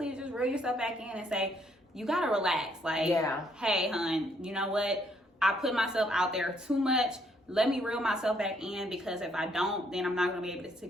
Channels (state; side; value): normal; both; correlation 0.70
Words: just reel yourself back in and say, you got to relax. Like, hey, hun, you know what? I put myself out there too much. Let me reel myself back in, because if I don't, then I'm not going to be able to